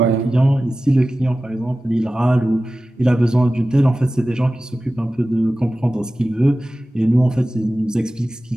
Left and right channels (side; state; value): both; normal; correlation 0.95